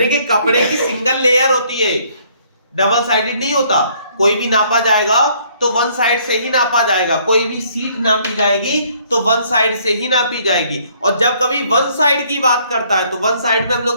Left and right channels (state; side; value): inverted; both; correlation -0.63